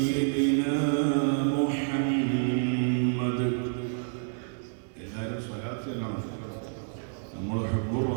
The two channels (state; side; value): silent; left; digital silence